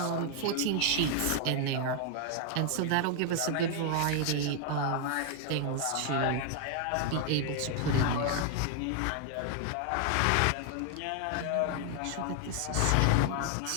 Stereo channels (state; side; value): different; both; correlation 0.00